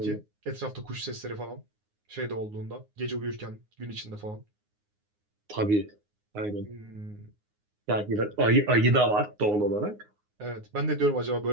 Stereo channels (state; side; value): late; left; 9.6 ms